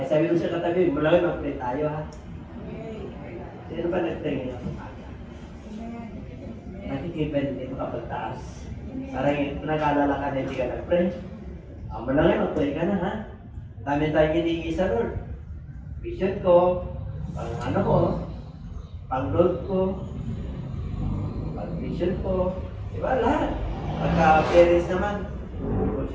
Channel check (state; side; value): identical; both; correlation 1.00